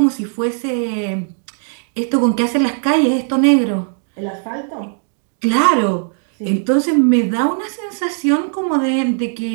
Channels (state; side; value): silent; left; 61 dB below the other